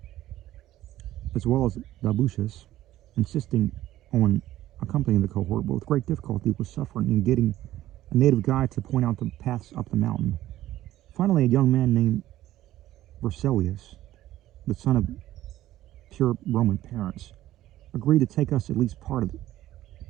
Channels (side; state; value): left; quieter; 14.3 dB